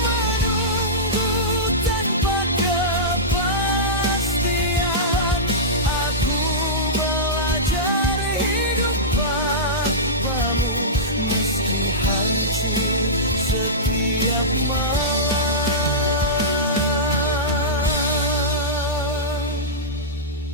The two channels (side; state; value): both; normal; correlation -0.15